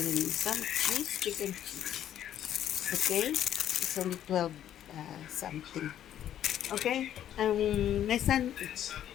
some cheese, chicken cheese. Okay, it's only 12 something. Okay, my son,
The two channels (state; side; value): quieter; right; 10.9 dB